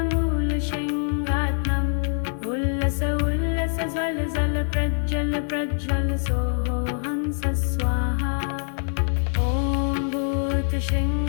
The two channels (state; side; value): silent; right; digital silence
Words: प्रज्वल सोहो हंस स्वाहा। ॐ